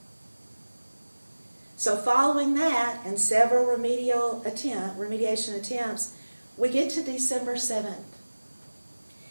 So following that and several remediation attempts, we get to December 7th.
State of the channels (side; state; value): both; inverted; correlation -1.00